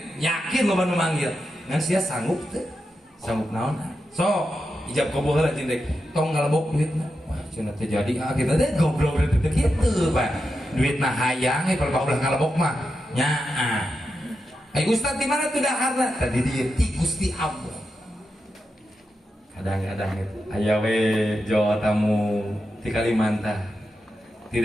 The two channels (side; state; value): both; normal; correlation 0.88